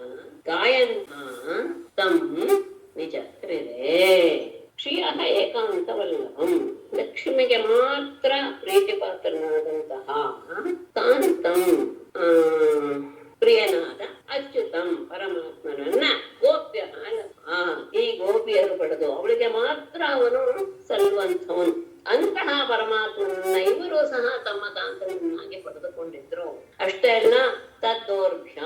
ಗಾಯಂತ್ಯಃ ತಂ ವಿಜತ್ರಿರೇ. ಶ್ರಿಯಃ ಏಕಾಂತವಲ್ಲಭಂ ಲಕ್ಷ್ಮಿಗೆ ಮಾತ್ರ ಪ್ರೀತಿಪಾತ್ರನಾದಂತಹ ಕಾಂತಂ ಪ್ರಿಯನಾದ ಅಚ್ಯುತಂ ಪರಮಾತ್ಮನನ್ನ ಗೋಪ್ಯ ಈ ಗೋಪಿಯರು ಪಡೆದು ಅವಳಿಗೆ ಮಾತ್ರ ಅವನು ಸಲ್ಲುವಂಥವನು. ಅಂತಹ ಪರಮಾತ್ಮನನ್ನ ಇವರು ಸಹ ತಮ್ಮ ಕಾಂತನನ್ನಾಗಿ ಪಡೆದುಕೊಂಡಿದ್ರು. ಅಷ್ಟೇ ಅಲ್ಲ,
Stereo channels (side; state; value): both; identical; correlation 1.00